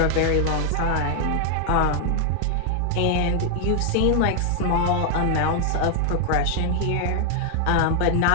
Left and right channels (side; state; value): both; different; correlation 0.00